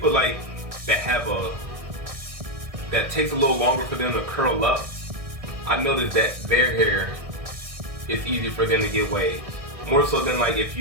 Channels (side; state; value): left; late; 1.6 ms